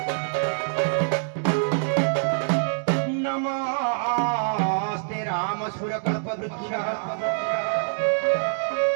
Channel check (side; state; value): left; silent; digital silence